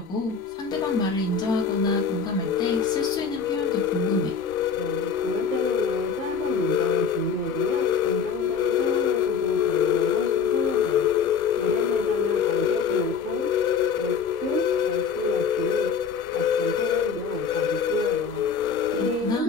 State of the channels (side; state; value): right; quieter; 6.1 dB